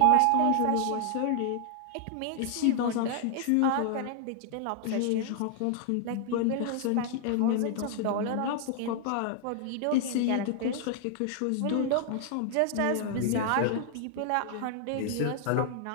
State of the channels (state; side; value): different; both; correlation 0.00